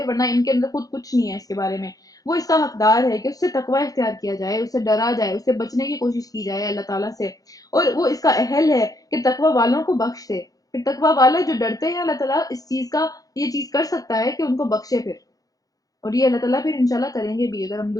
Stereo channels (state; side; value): late; right; 0.17 ms